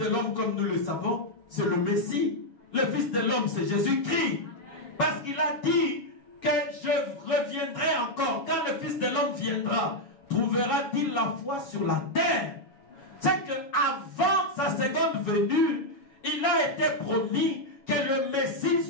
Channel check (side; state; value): right; late; 7.2 ms